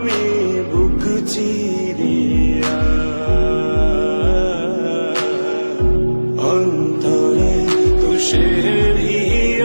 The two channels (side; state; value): both; inverted; correlation -1.00